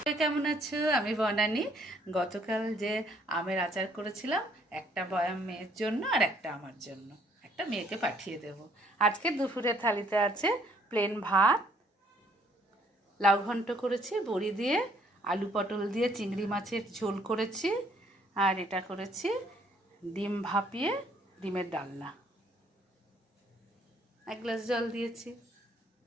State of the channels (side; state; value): both; normal; correlation 0.65